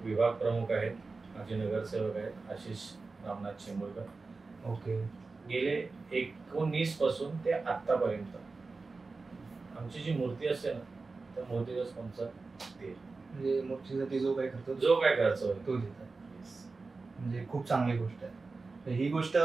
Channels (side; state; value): left; quieter; 3.9 dB